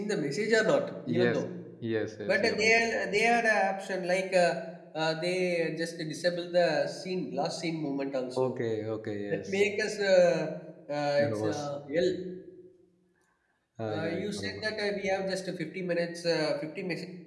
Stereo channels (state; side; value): identical; both; correlation 1.00